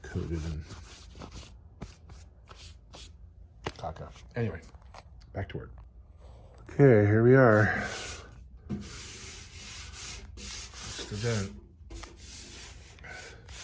Coated in caca. Anyway, back to work. Okay, here we are. That's the dent.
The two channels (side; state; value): both; identical; correlation 1.00